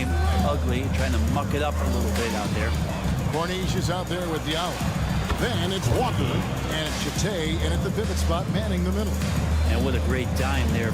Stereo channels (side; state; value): both; identical; correlation 1.00